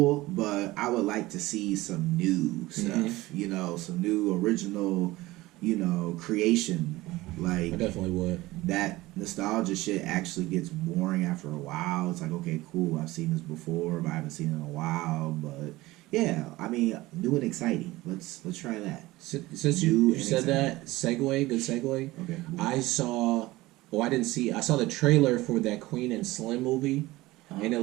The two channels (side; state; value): left; quieter; 18.9 dB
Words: but I would like to see some new stuff. Some new original, creation. Like I definitely would. That nostalgia shit actually gets boring after a while. It's like, okay, cool, I've seen this before, but I haven't seen it in a while. But yeah, I mean, new and exciting. Let's try that. Since you said that, good segue. Okay. I saw the trailer for that Queen and Slim movie, and it